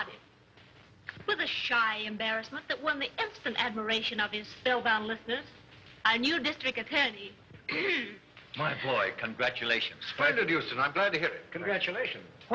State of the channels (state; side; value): identical; both; correlation 1.00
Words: With a shy embarrassment that won the instant admiration of his spellbound listeners, our new district attorney... My boy, congratulations. Splendid, Houston. I'm glad to hear it. Congratulations.